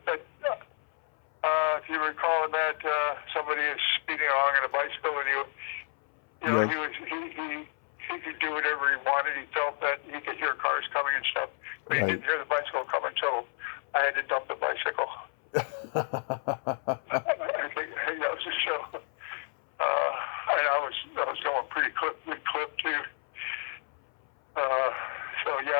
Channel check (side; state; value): right; silent; 57 dB below the other